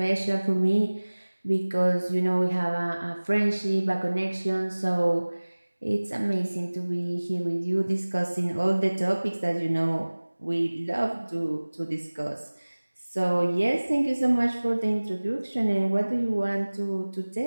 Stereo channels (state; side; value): inverted; both; correlation -1.00